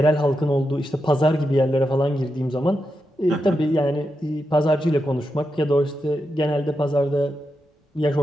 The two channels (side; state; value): both; normal; correlation 0.87